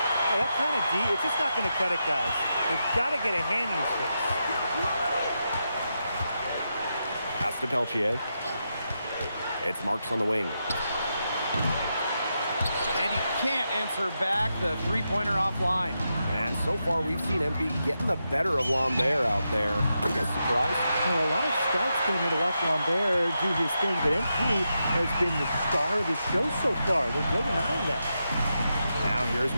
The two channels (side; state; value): both; inverted; correlation -0.86